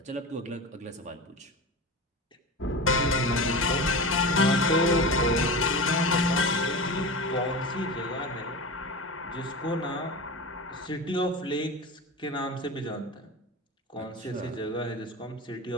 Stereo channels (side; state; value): both; normal; correlation 0.28